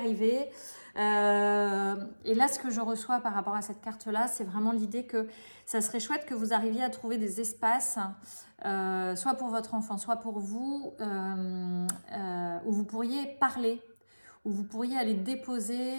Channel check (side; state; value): both; inverted; correlation -1.00